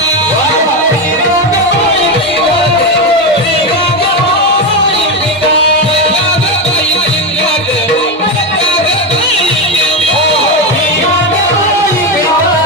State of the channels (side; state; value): both; normal; correlation 0.12